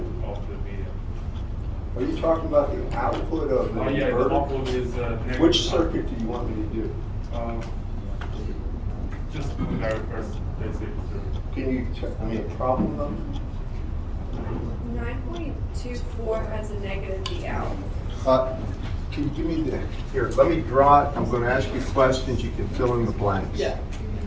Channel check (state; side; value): identical; both; correlation 1.00